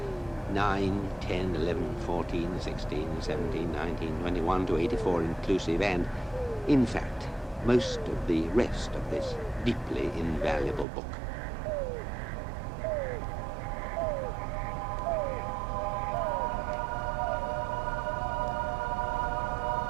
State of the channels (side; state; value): left; drops out; at 10.9 s